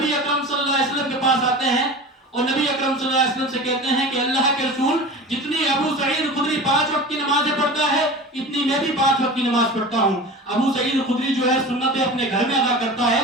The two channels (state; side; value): normal; both; correlation 0.34